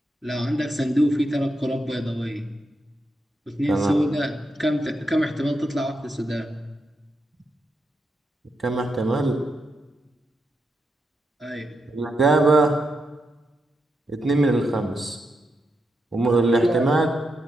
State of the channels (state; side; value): normal; both; correlation 0.84